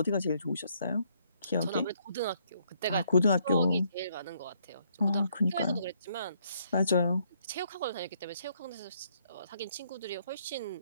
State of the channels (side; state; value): both; inverted; correlation -0.70